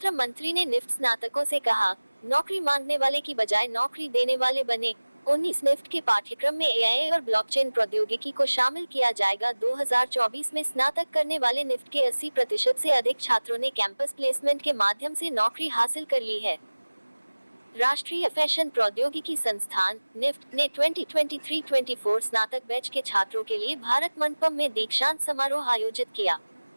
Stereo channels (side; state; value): both; inverted; correlation -1.00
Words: मंत्री ने निफ्ट स्नातकों से कहा, नौकरी मांगने वाले की बजाय नौकरी देने वाले बने। 19 निफ्ट के पाठ्यक्रम में एआई और ब्लॉकचेन प्रौद्योगिकी को शामिल किया जाएगा। 2024 में स्नातक करने वाले निफ्ट के 80% से अधिक छात्रों ने कैंपस प्लेसमेंट के माध्यम से नौकरी हासिल कर ली है। राष्ट्रीय फैशन प्रौद्योगिकी संस्थान निफ्ट ने 2023-24 स्नातक बैच के छात्रों के लिए भारत मंडपम में दीक्षांत समारोह आयोजित किया।